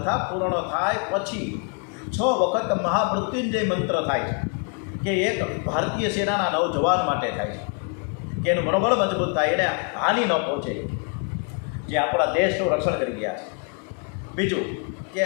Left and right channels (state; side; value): quieter; right; 36.6 dB